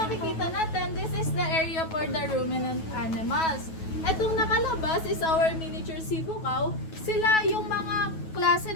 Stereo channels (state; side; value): late; right; 9.3 ms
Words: natin, this is the area for the ruminant animals. Itong nakalabas is our miniature Cebu cow. Sila yung mga klase